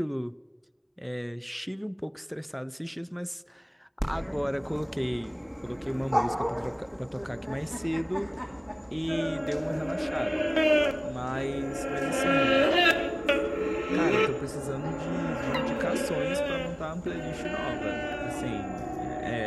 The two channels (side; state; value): both; identical; correlation 1.00